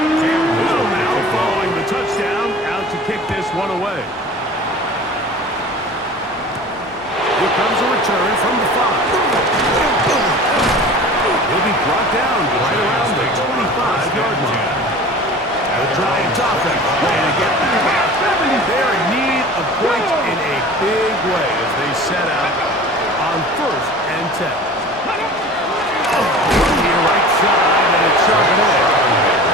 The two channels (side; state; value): both; normal; correlation 0.40